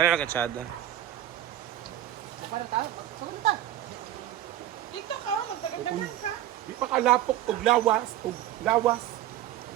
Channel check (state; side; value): quieter; left; 12.7 dB